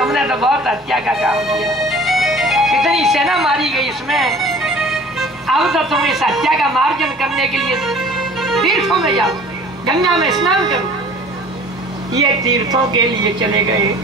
तो बहुत हत्या का काम किया, कितनी सेना मारी गई इसमें। अब तो तुम इस हत्या का मार्जन करने के लिए तीर्थों में जाओ, गंगा में स्नान करो। ये तीर्थों के लिए चले गए।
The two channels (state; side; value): normal; both; correlation 0.47